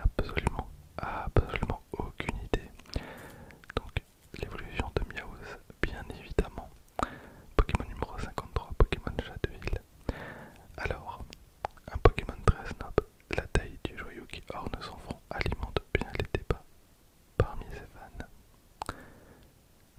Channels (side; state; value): both; identical; correlation 1.00